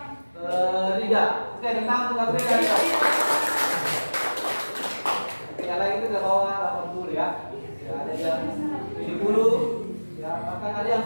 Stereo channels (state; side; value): inverted; both; correlation -1.00